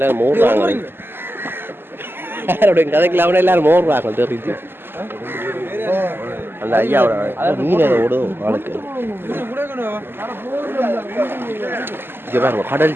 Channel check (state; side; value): late; left; 0.10 ms